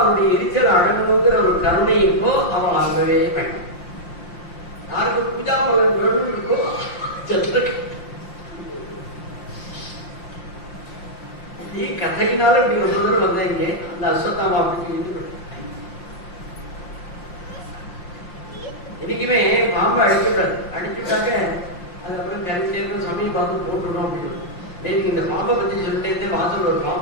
எரிச்சல் அடங்கணுங்கிற ஒரு கருணை இருக்கோ அவன் வாங்கவே வேண்டாம். யாருக்கு பூஜா பலன் வேணும் இருக்கோ நீ கதையினால இப்படி ஒரு தூரம் வந்தீங்க. அந்த அஸ்வத்தாமா அப்படின்னு இன்னைக்குமே பாம்பு அடிச்சுட்டாரு. அடிச்சுட்டாக்க அதுக்கப்புறம் கரைச்சேரும் சமயம் பார்த்து போட்டுடும் அப்படின்னு. நேற்று இந்த பாம்பை பத்தி சொல்லிட்டே வாசல் ஒரு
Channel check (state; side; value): late; right; 5.7 ms